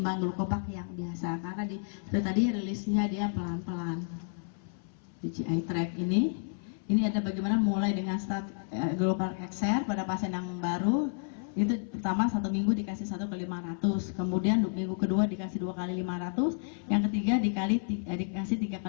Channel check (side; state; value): right; silent; 57 dB below the other